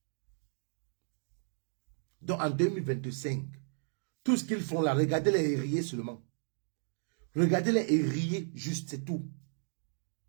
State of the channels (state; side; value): silent; left; digital silence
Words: Donc en 2025, tout ce qu'ils font là, regardez-les et riez seulement. Regardez-les et riez, juste, c'est tout.